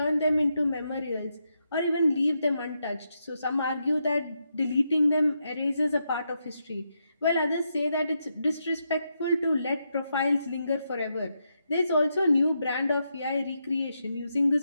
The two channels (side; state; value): both; inverted; correlation -0.83